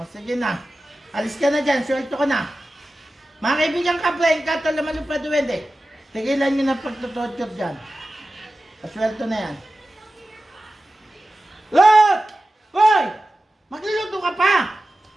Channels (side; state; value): both; normal; correlation 0.94